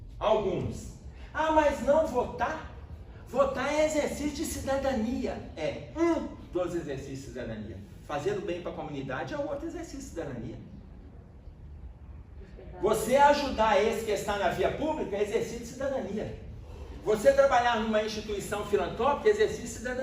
alguns, ah, mas não votar? Votar é exercício de cidadania. É um dos exercícios de cidadania. Fazer o bem para a comunidade é o outro exercício de cidadania. Você ajudar esse que está na via pública é exercício de cidadania. Você trabalhar numa instituição filantrópica é exercício de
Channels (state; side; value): identical; both; correlation 1.00